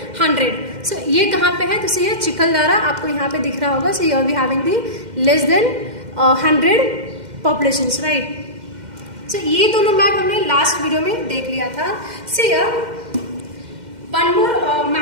100. सो ये कहाँ पे है, तो सी चिखलदारा आपको यहाँ पे दिख रहा होगा. So we having the less than 100 populations, right. So ये दोनों मैप हमने लास्ट वीडियो में देख लिया था. See one more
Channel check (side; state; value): left; late; 2.1 ms